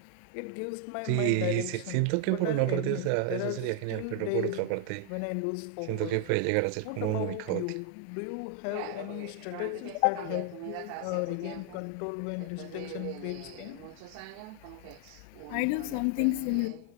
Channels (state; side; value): different; both; correlation 0.00